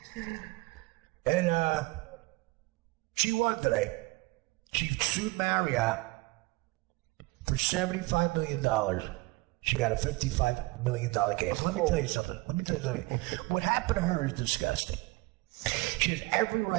And she won today. She sued Marriott for $75 million. She got a $55 million case. Let me tell you something. What happened to her is disgusting. She has every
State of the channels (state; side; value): quieter; left; 22.8 dB